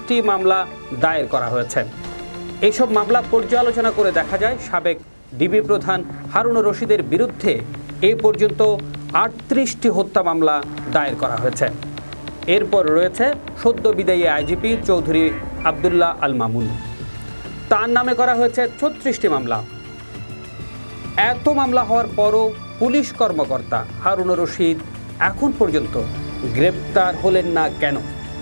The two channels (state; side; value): inverted; both; correlation -1.00